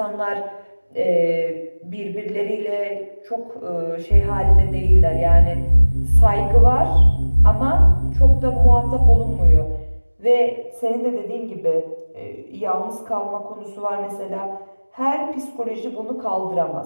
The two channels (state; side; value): inverted; both; correlation -1.00